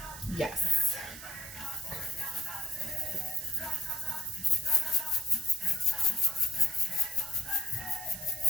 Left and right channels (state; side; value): noise; right; hiss, 12 dB below the sound